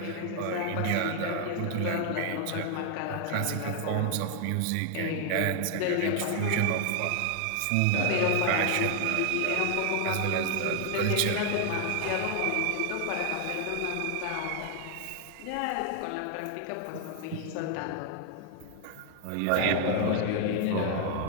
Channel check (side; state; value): both; different; correlation 0.00